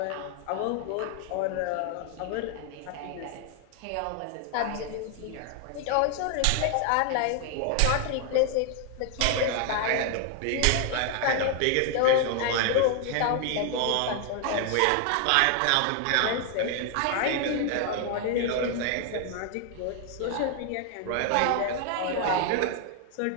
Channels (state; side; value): different; both; correlation 0.00